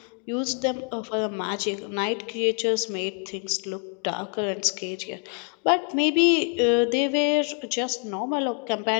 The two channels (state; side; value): quieter; right; 38.9 dB